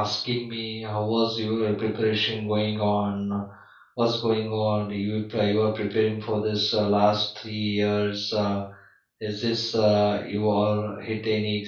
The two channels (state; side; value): identical; both; correlation 1.00